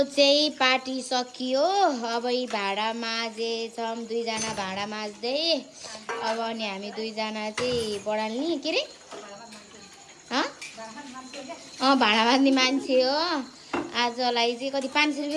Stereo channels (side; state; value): both; identical; correlation 1.00